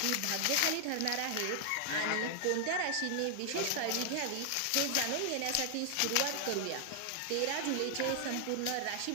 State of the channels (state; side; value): different; both; correlation 0.00